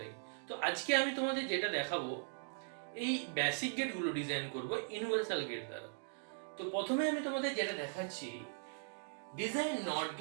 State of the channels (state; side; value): silent; left; digital silence